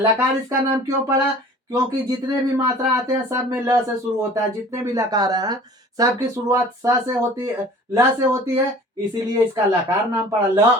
इसका नाम क्यों पड़ा? क्योंकि जितने भी मात्रा आते हैं सब में ल से शुरू होता है। जितने भी लकार हैं सबकी शुरुआत स से होती है, ल से होती है, इसीलिए इसका लकार नाम पड़ा। ल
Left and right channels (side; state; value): both; normal; correlation 0.46